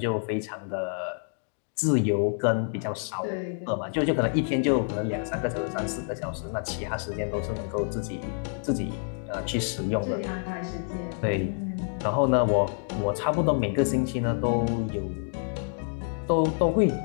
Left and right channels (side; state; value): right; silent; 59 dB below the other